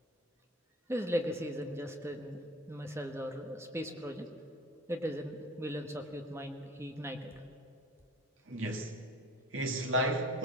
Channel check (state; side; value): normal; both; correlation 0.43